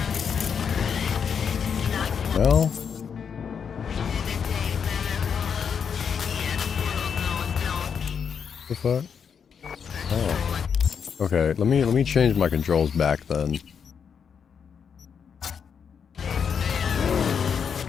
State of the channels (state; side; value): quieter; right; 6.9 dB